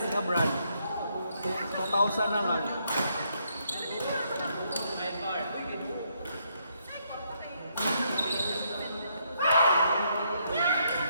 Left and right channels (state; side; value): inverted; both; correlation -0.74